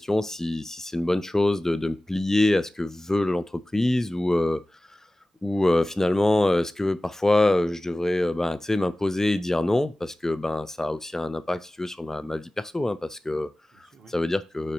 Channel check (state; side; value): normal; both; correlation 0.97